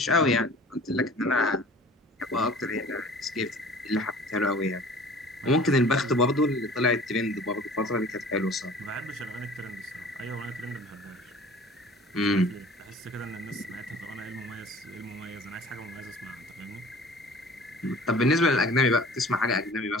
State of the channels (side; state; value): both; normal; correlation 0.46